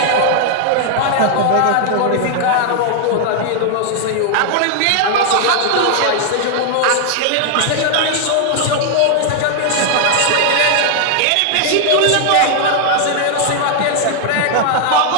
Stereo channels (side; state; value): both; different; correlation 0.00